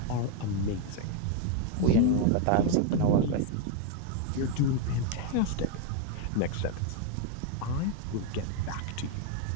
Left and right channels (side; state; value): both; different; correlation 0.01